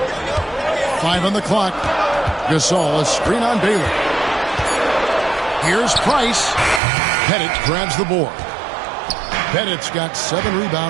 5 on the clock. Gasol, a screen on Baylor. Here's Price. Pettit grabs the board. Pettit's got 7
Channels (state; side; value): drops out; left; at 6.8 s